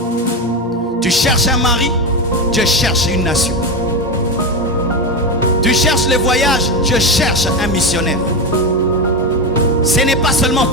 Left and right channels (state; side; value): normal; both; correlation 0.16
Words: Tu cherches un mari, Dieu cherche une nation. Tu cherches les voyages, Dieu cherche un missionnaire. Ce n'est pas seulement